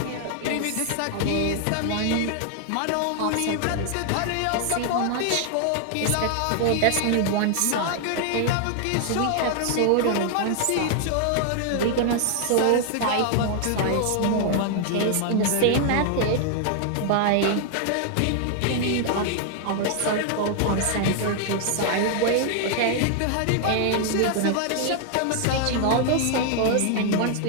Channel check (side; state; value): both; different; correlation 0.00